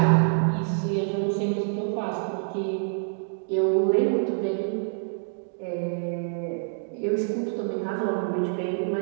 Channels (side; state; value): left; silent; digital silence